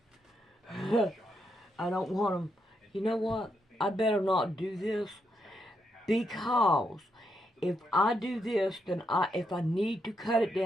I don't want them. You know what? I better not do this, because if I do this, then if I need to cut it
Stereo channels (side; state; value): both; normal; correlation 0.80